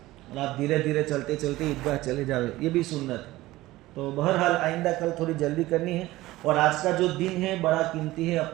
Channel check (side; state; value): left; quieter; 17.6 dB